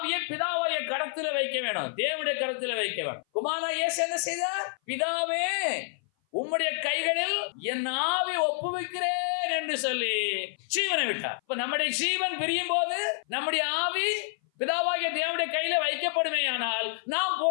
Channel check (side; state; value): right; silent; 56 dB below the other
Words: பிதாவாகிய கரத்தில வைக்க வேணும், தேவனுடைய கரத்தில வைக்க வேணும். குமாரனாகிய இயேசு என்ன செய்தார்? பிதாவே உம்முடைய கைகளில் என் ஆவி ஒப்புவிக்கிறேன் என்று சொல்லி ஜீவனை விட்டார். இப்ப நம்முடைய ஜீவன் பிரியும் போது நம்முடைய ஆவி பிதாவாகிய தேவனுடைய கையில வைக்கப்படுமேயானால் நாம்